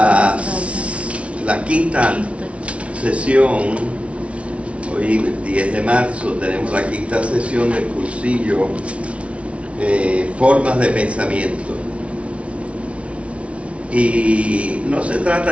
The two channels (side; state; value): left; late; 0.062 ms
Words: quinta sesión, hoy 10 de marzo tenemos la quinta sesión del cursillo Formas de Pensamiento. Y no se trata